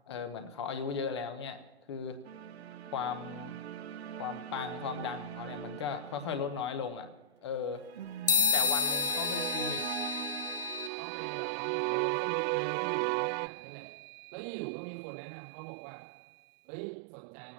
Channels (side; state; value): left; drops out; at 10.9 s